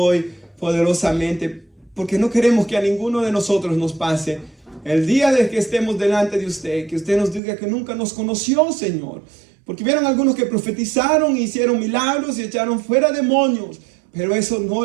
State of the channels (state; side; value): drops out; left; at 7.4 s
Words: poderosamente, porque no queremos que a ninguno de nosotros nos pase el día de que estemos delante de usted, que usted nos diga que nunca nos conoció, Señor, porque vieron algunos que profetizaron, hicieron milagros y echaron fuera demonios, pero eso no